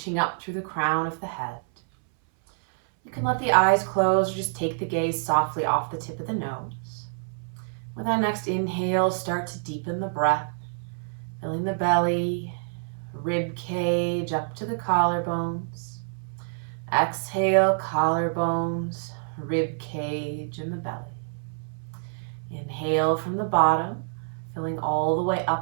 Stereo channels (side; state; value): left; silent; 59 dB below the other